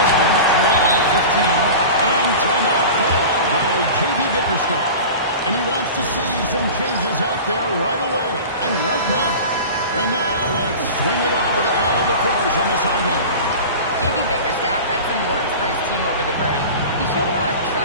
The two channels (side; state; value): both; inverted; correlation -0.34